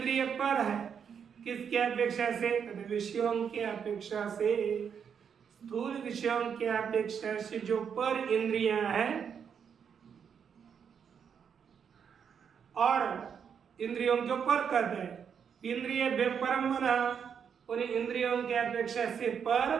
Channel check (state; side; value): quieter; left; 7.3 dB